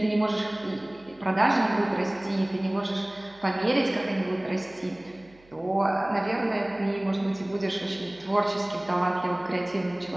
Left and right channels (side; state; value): right; noise; hum, 28 dB below the sound